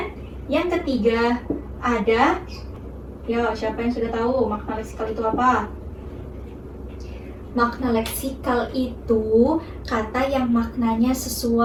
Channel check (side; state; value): both; identical; correlation 1.00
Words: yang ketiga ada, siapa yang sudah tahu makna leksikal itu apa? Makna leksikal itu kata yang maknanya